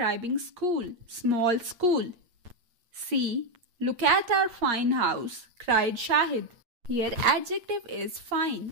school, small school. C. Look at our fine house, cried Shahid. Here adjective is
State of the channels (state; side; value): late; left; 8.5 ms